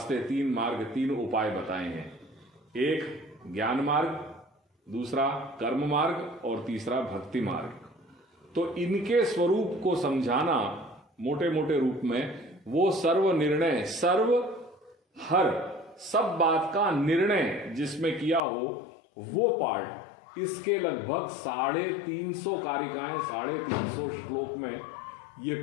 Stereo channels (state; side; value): drops out; right; at 18.4 s